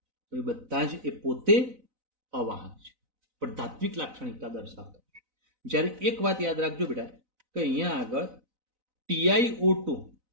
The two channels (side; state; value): left; late; 4.0 ms